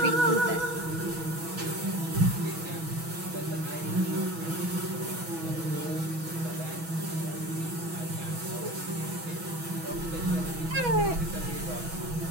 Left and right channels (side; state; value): left; late; 6.1 ms